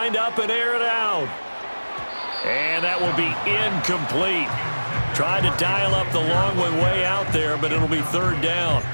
up and air it out. And that will be incomplete. Tried to dial up the long one way out there, but it'll be 3rd down.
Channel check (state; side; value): inverted; both; correlation -1.00